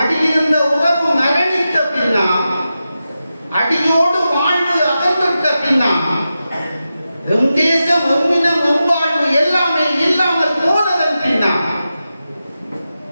உறவு மரணித்த பின்னா, அடியோடு வாழ்வு அகன்ற பின்னா, எம் தேசம் எம்மினம் எவ்வாழ்வு எல்லாமே இல்லாமல் போனதன் பின்னா,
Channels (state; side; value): inverted; both; correlation -0.91